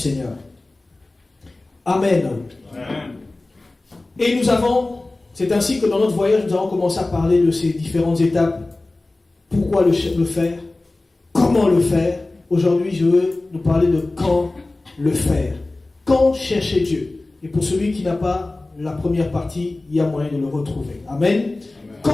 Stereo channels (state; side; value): quieter; right; 3.0 dB